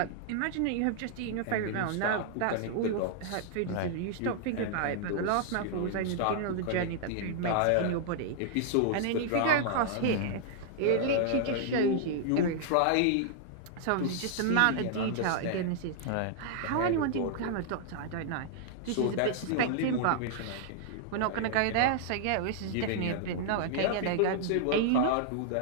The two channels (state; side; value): different; both; correlation -0.01